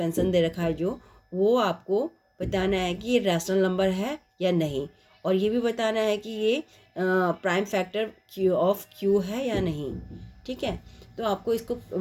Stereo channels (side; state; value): both; identical; correlation 1.00